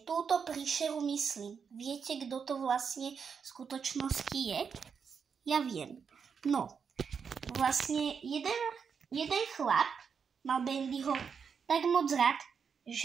túto príšeru myslím. Viete, kto to vlastne v skutočnosti je? Ja viem. No, vlastne jeden chlap mal Bendyho tak moc rád,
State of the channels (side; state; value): left; quieter; 6.4 dB